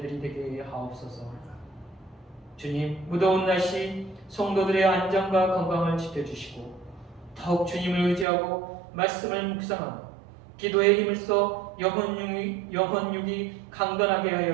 되게 하옵소서. 주님, 무더운 날씨 성도들의 안전과 건강을 지켜주시고 더욱 주님을 의지하고 말씀을 묵상하며 기도에 힘을 써 영혼육이 강건하게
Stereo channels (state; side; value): drops out; left; at 8.2 s